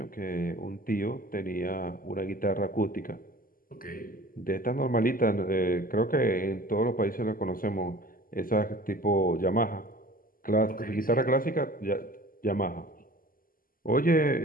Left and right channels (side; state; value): right; late; 0.41 ms